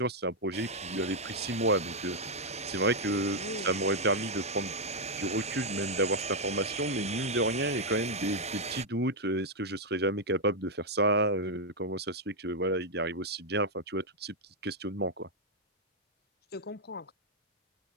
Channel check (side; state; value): both; normal; correlation -0.01